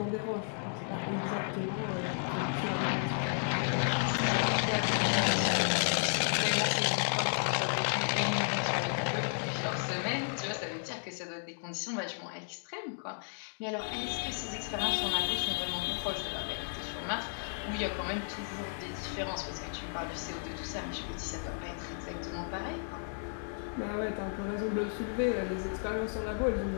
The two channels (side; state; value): right; silent; digital silence